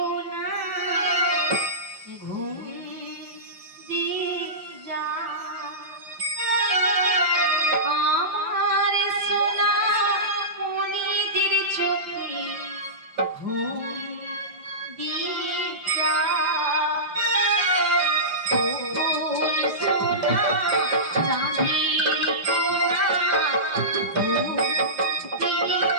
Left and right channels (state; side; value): late; left; 5.7 ms